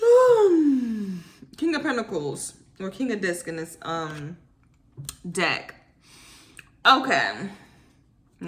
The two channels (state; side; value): identical; both; correlation 1.00